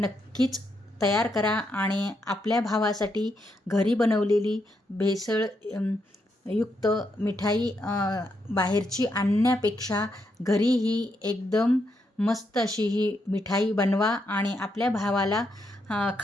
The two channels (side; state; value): both; normal; correlation 0.80